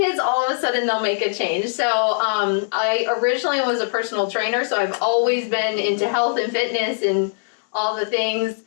all of a sudden they'll make a change. So I originally was a personal trainer, so I've always been into health and fitness and all the things,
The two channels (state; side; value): silent; right; 62 dB below the other